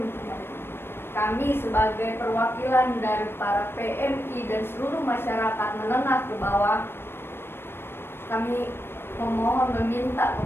mereka. Kami sebagai perwakilan dari para PMI dan seluruh masyarakat menengah ke bawah, kami memohon, meminta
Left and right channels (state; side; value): late; right; 0.11 ms